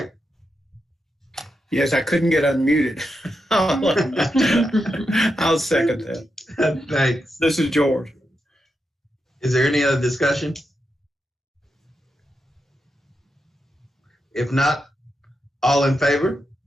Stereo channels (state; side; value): normal; both; correlation 0.86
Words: Yes, I couldn't get unmuted. I'll second that. Thanks. This is George. Is there any other discussion? If not, all in favor?